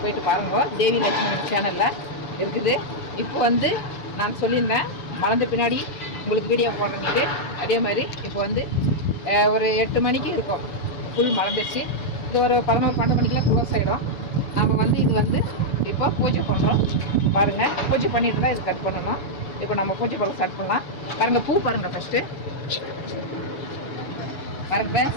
போயிட்டு பாருங்க. தேவி லட்சுமி சேனலில் இருக்குது. இப்போ நான் சொல்லியிருந்தேன் மலர்ந்த பின்னாடி உங்களுக்கு வீடியோ போடுறேன்ட்டு. அதே மாதிரி இப்போ ஒரு 8 மணிக்கு இருக்கும், ஃபுல் மலர்ந்துச்சு. இது ஒரு 11-12 மணிக்கெலாம் க்ளோஸ் ஆகிடும். நம்ம இது இப்போ பூஜை பண்ணுறோம். பாருங்கள், பூஜை பண்ணிட்டு தான் இது கட் பண்ணணும். இப்போ நம்ம பூஜை பண்ண ஸ்டார்ட் பண்ணலாம். பாருங்கள், பூ பாருங்கள். ஃபஸ்ட்டு பாருங்க,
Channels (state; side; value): late; right; 7.0 ms